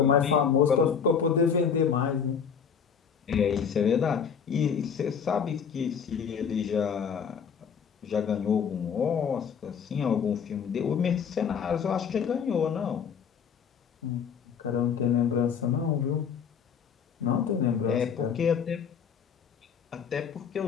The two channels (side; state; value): right; quieter; 7.1 dB